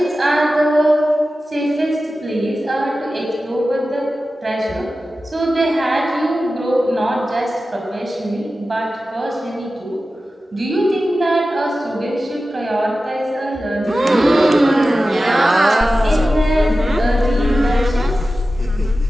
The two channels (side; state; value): both; normal; correlation 0.94